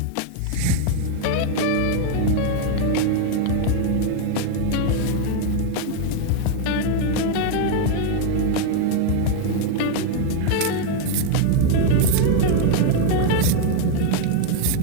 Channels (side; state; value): both; different; correlation 0.01